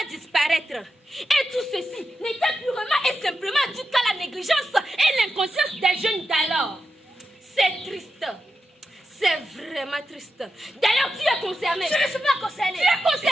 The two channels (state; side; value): normal; both; correlation 0.88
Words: disparaître. Et tout ceci n'était purement et simplement dû qu'à la négligence et l'inconscience des jeunes d'alors. C'est triste. C'est vraiment triste. D'ailleurs, tu es concerné. Je ne suis pas concerné. Tu es